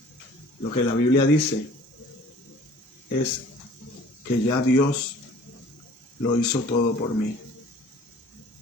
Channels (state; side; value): normal; both; correlation 0.50